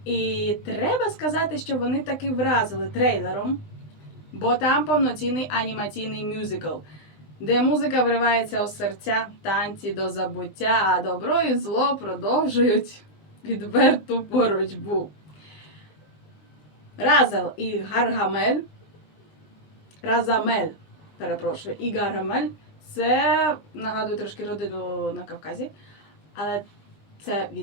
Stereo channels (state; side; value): late; right; 20 ms